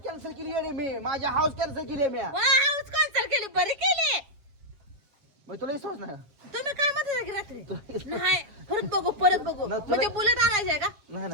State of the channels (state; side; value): late; left; 7.4 ms